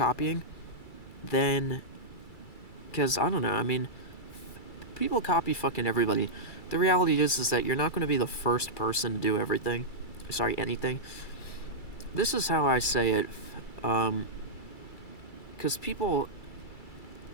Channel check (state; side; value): late; right; 2.3 ms